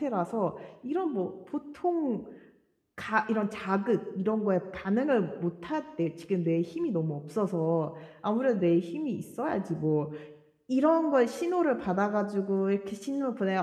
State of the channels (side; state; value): both; identical; correlation 1.00